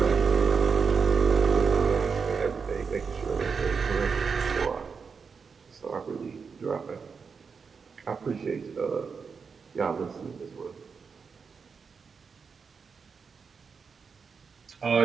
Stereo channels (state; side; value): quieter; left; 5.6 dB